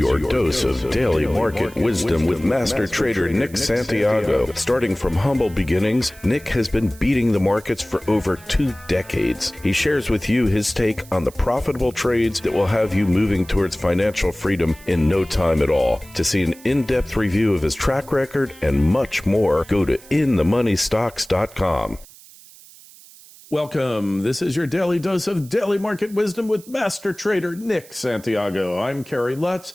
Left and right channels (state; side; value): noise; right; hiss, 22 dB below the sound